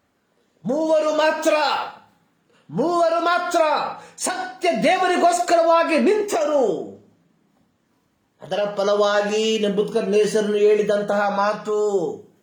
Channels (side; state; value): both; identical; correlation 1.00